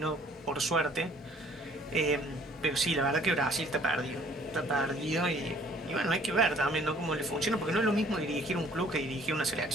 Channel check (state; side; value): normal; both; correlation 0.57